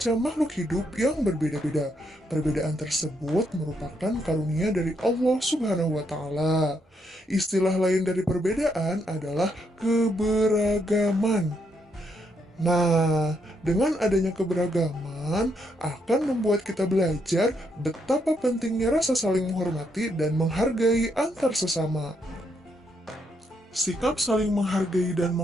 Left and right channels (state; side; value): normal; both; correlation 0.76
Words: makhluk hidup yang berbeda-beda. Perbedaan tersebut merupakan karunia dari Allah Subhanahu wa Ta'ala. Istilah lain dari perbedaan adalah keberagaman. Nah, dengan adanya keberagaman akan membuat kita belajar betapa pentingnya rasa saling menghormati dan menghargai antar sesama. Sikap saling menghargai dan